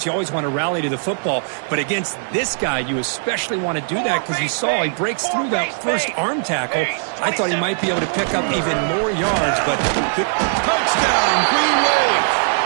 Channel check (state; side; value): silent; left; digital silence